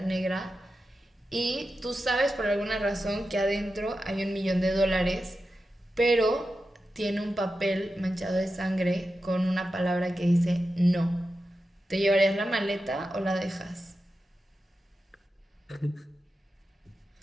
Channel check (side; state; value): both; normal; correlation 0.91